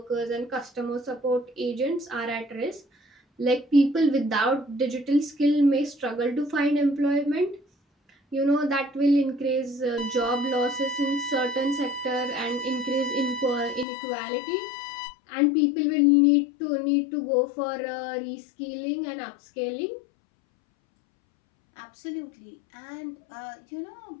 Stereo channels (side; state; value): right; drops out; at 13.9 s